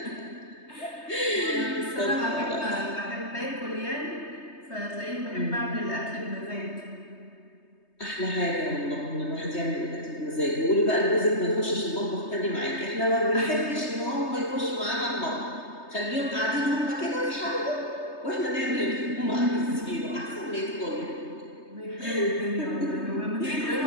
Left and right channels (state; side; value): late; right; 3.2 ms